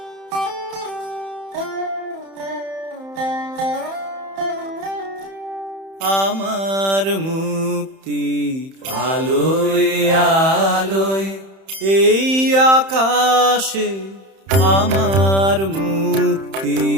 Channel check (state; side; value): late; left; 31 ms